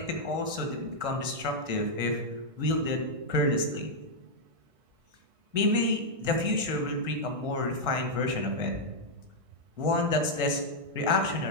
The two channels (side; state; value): left; late; 1.6 ms